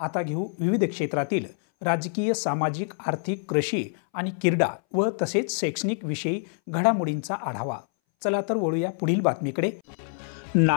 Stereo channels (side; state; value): right; silent; 61 dB below the other